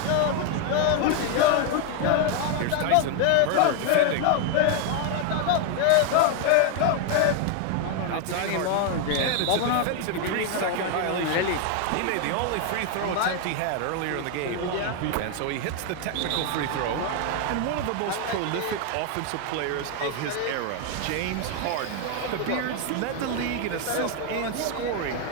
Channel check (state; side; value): different; both; correlation 0.00